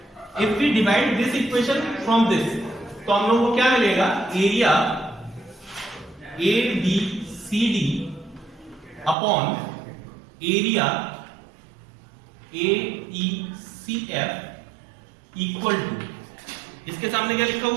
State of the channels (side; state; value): left; drops out; at 9.2 s